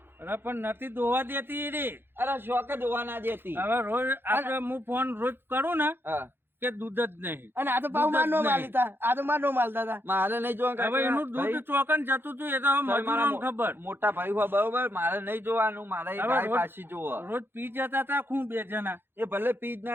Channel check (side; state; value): left; late; 0.10 ms